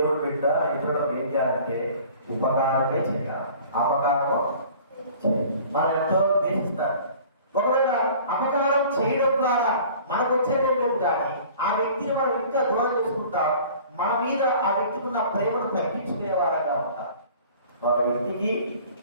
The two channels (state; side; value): inverted; both; correlation -0.47